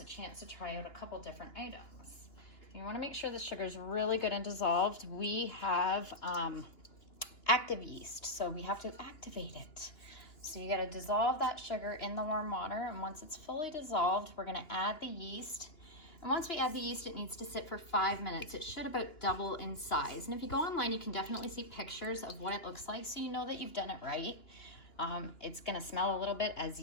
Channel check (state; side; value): late; right; 2.9 ms